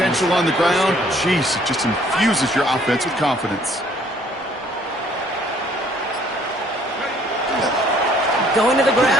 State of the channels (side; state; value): both; normal; correlation 0.60